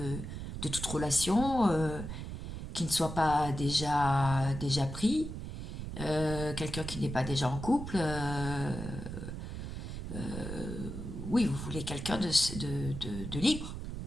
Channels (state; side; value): noise; right; rumble, 7 dB below the sound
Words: toute relation, qui ne soit pas déjà pris, quelqu'un qui n'est pas déjà en couple, oui, vous voulez quelqu'un libre,